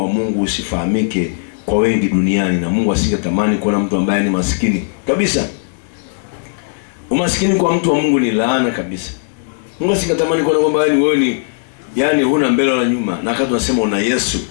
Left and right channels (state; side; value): silent; right; digital silence